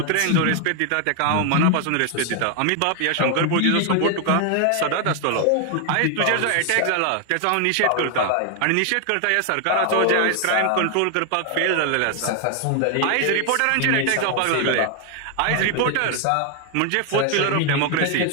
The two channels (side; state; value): both; different; correlation 0.00